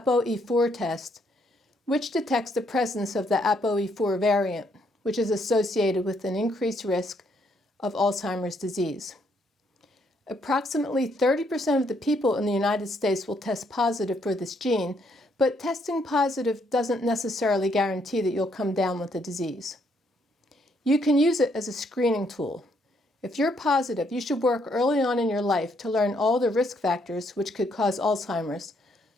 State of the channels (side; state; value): both; normal; correlation 0.72